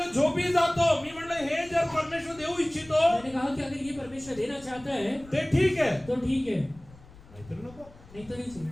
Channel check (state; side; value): noise; left; rumble, 22 dB below the sound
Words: झोपी जातो मी म्हणलं हे जर परमेश्वर देऊ इच्छितो मैंने कहा कि अगर ये परमेश्वर देना चाहता है ते ठीक आहे तो ठीक है नाहीतर नको नहीं तो नहीं चाहिए